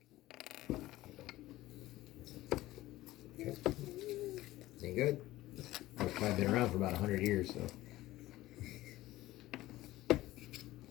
Okay. Ain't good. It's probably been around for about 100 years, so.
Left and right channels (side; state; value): right; quieter; 16.7 dB